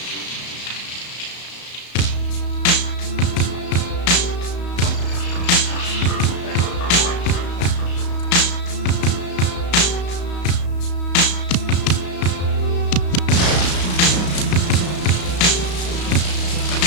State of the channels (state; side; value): late; right; 34 ms